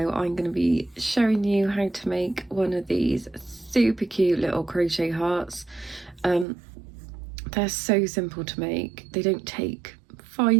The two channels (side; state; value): left; drops out; at 6.5 s